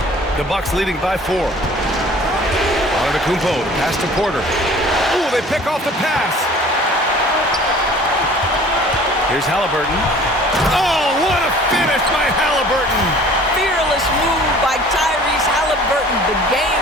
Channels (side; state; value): both; normal; correlation 0.48